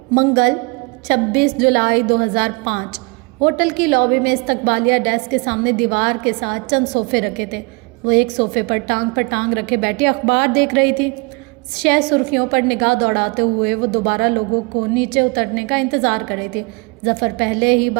منگل 26 جولائی 2005 ہوٹل کی لابی میں استقبالیہ ڈیسک کے سامنے دیوار کے ساتھ چند صوفے رکھے تھے۔ وہ ایک صوفے پر ٹانگ رکھے بیٹھی اخبار دیکھ رہی تھی۔ شہ سرخیوں پر نگاہ دوڑاتے ہوئے وہ دوبارہ لوگوں کو نیچے اترنے کا انتظار کر رہی تھی۔ ظفر پہلے ہی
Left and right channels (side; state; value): left; quieter; 29.7 dB